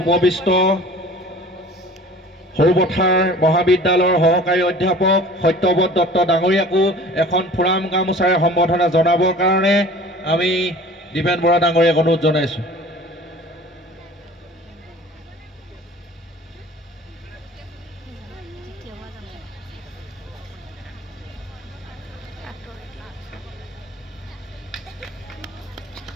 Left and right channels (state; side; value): normal; both; correlation 0.44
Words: উপবিষ্ট সৰুপথাৰ মহাবিদ্যালয়ৰ সহকাৰী অধ্যাপক সত্যব্ৰত দত্ত ডাঙৰীয়াকো এখন ফুৰাম গামোচাৰে সম্বৰ্ধনা জনাবৰ কাৰণে আমি দীপেন বৰা ডাঙৰীয়াক অনুৰোধ জনাইছোঁ।